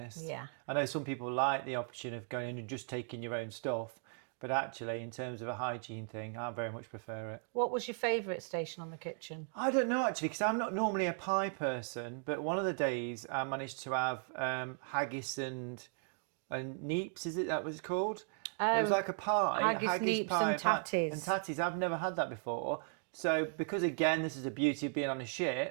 Yeah. I know some people like the option of going in and just taking your own stuff, but actually, in terms of a hygiene thing, I very much prefer it. What was your favourite station on the kitchen? I don't know, actually, because I'm not normally a pie person, but one of the days I managed to have haggis and neeps, is it that was called? It was like a pie, haggis, neeps pie, and tatties. And tatties, I've never had that before. So because, again, this is the beauty of being on a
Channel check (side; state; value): left; silent; 53 dB below the other